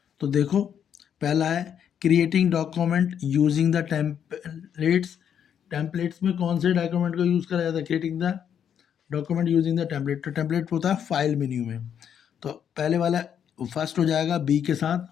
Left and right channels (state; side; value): quieter; right; 8.6 dB